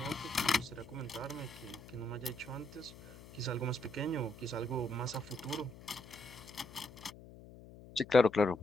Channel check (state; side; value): noise; left; hum, 17 dB below the sound